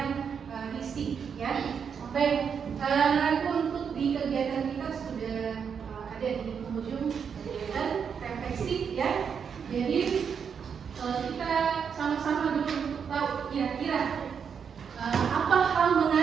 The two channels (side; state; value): left; quieter; 6.9 dB